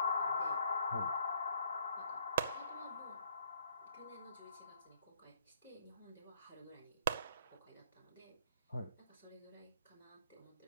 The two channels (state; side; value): inverted; both; correlation -0.62